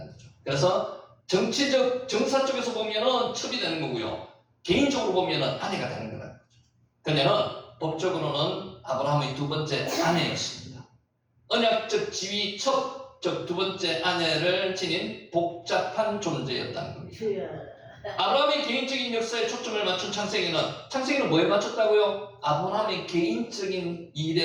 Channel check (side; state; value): both; identical; correlation 1.00